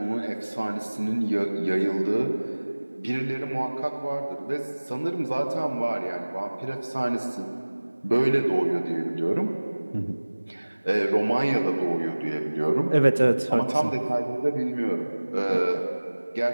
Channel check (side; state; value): both; inverted; correlation -1.00